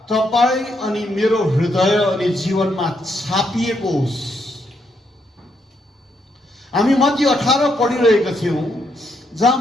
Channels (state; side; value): normal; both; correlation 0.77